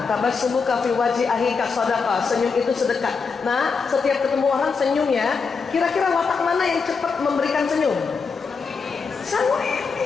tabassumuka fi wajhi akhika shadaqah, senyum itu sedekah. Nah, setiap ketemu orang senyum ya. Kira-kira watak mana yang cepat memberikan senyum?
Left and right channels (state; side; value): quieter; right; 5.1 dB